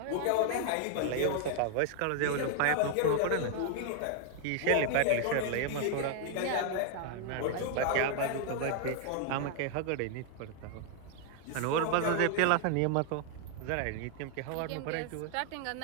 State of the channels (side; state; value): both; different; correlation 0.00